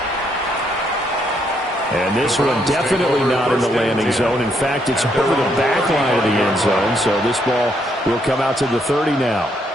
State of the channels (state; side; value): normal; both; correlation 0.73